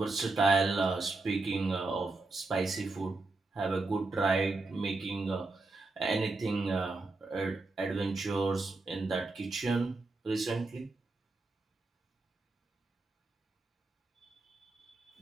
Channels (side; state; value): left; quieter; 3.3 dB